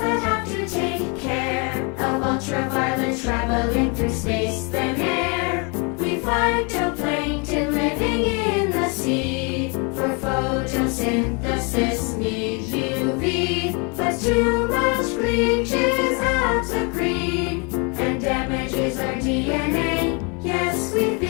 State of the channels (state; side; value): quieter; right; 33.1 dB